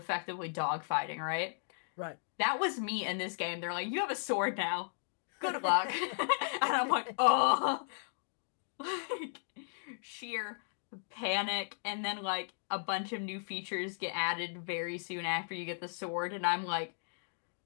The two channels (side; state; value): right; silent; digital silence